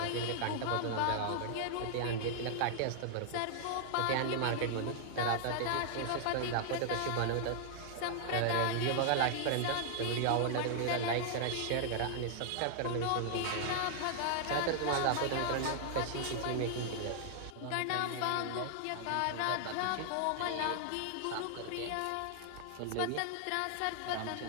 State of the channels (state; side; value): different; both; correlation -0.01